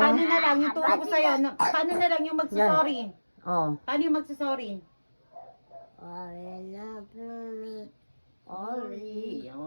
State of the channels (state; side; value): inverted; both; correlation -1.00